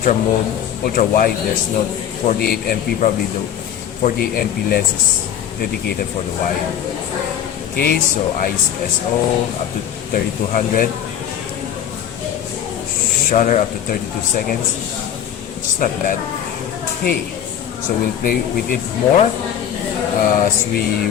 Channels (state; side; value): quieter; right; 9.6 dB